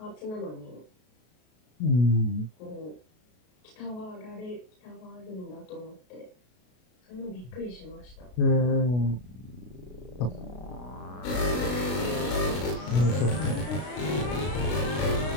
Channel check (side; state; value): right; late; 33 ms